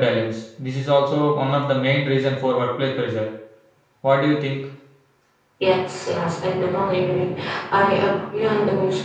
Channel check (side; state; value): both; identical; correlation 1.00